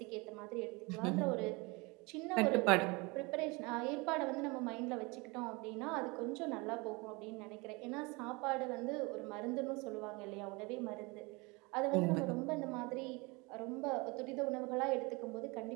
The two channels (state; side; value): quieter; left; 26.8 dB